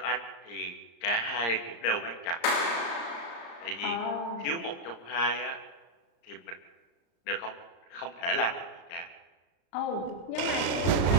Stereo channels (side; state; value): right; late; 34 ms